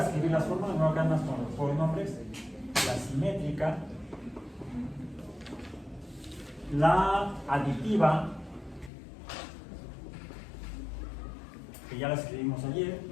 escribir las formas, no hagan más por nombres, la simétrica, la aditiva, que ya la escribimos ayer,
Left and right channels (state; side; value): drops out; right; at 8.9 s